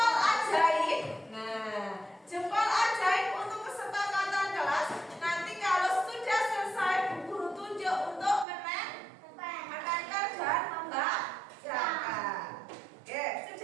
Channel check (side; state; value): left; drops out; at 8.5 s